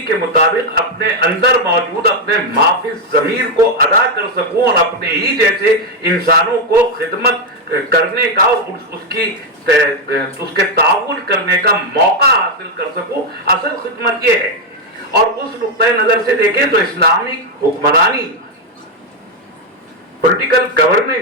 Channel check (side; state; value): both; normal; correlation 0.03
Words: کے مطابق اپنے اندر موجود اپنے معافی ضمیر کو ادا کر سکوں اور اپنے ہی جیسے انسانوں کو خدمت کرنے کا اور اس کے تعاون کرنے کا موقع حاصل کر سکوں، اصل خدمت یہ ہے۔ اور اس نقطۂ نظر سے دیکھیں تو اسلامی حکمرانی، پولیٹیکل